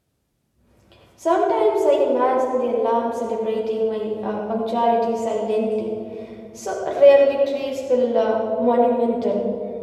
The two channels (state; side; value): identical; both; correlation 1.00